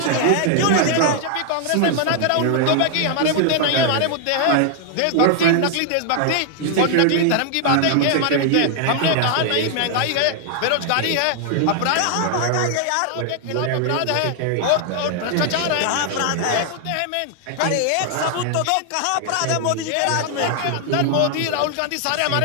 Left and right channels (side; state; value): both; different; correlation 0.00